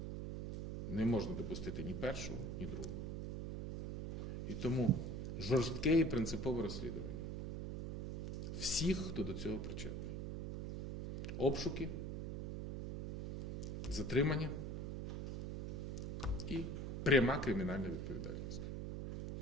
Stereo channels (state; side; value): noise; right; hum, 4 dB below the sound